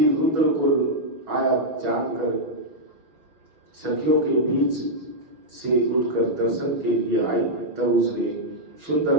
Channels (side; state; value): left; late; 6.3 ms